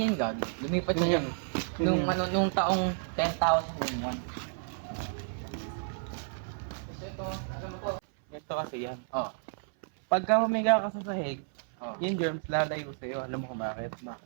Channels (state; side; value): silent; left; 56 dB below the other